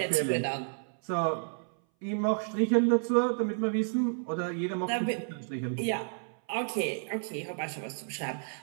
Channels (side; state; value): left; silent; 57 dB below the other